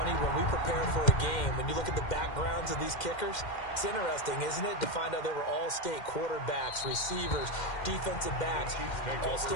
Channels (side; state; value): right; late; 2.1 ms